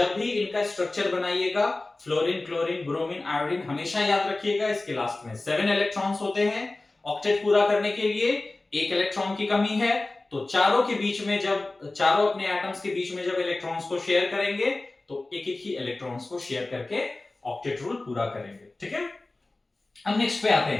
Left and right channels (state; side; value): quieter; right; 3.0 dB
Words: भी इनका स्ट्रक्चर बनाइएगा, फ्लोरीन, क्लोरीन, ब्रोमीन, आयोडीन, हमेशा याद रखिएगा इसके लास्ट में 7 इलेक्ट्रॉन्स होते हैं। ऑक्टेट पूरा करने के लिए एक इलेक्ट्रॉन की कमी है, तो चारों के बीच में, जब चारों अपने एटम्स के बीच में जब इलेक्ट्रॉन्स को शेयर करेंगे तो एक एक ही इलेक्ट्रॉन्स को शेयर करके ऑक्टेट रूल पूरा करेंगे। ठीक है, अब नेक्स्ट पे आते